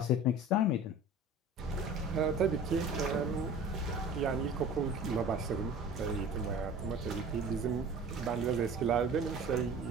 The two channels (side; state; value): both; normal; correlation 0.41